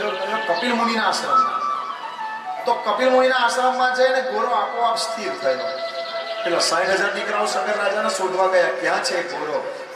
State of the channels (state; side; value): identical; both; correlation 1.00